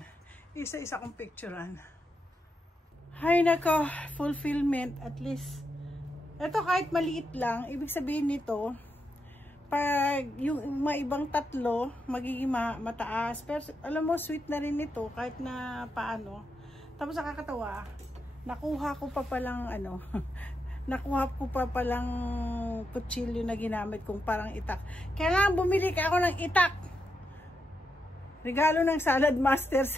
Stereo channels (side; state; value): both; normal; correlation 0.84